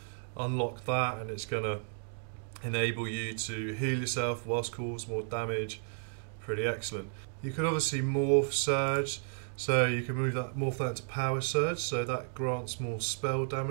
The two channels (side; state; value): left; silent; digital silence